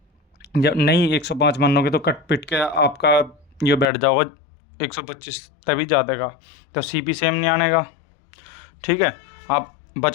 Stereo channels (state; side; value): drops out; right; at 3.9 s